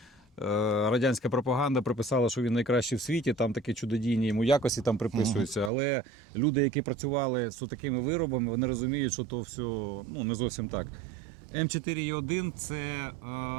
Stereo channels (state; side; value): drops out; left; at 5.7 s